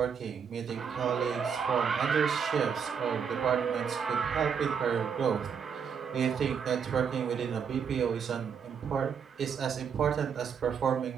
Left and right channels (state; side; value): quieter; left; 6.9 dB